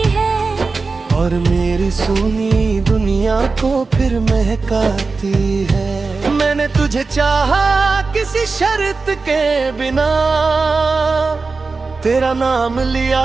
है, और मेरी सुनी दुनिया को फिर महकाती है। मैंने तुझे चाहा किसी शर्त के बिना, तेरा नाम लिया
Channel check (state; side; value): quieter; left; 4.1 dB